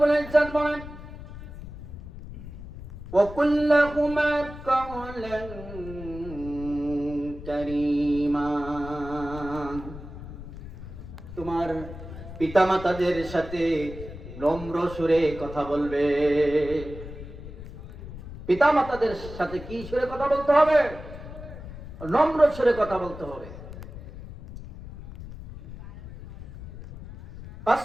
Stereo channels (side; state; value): left; noise; rumble, 12 dB below the sound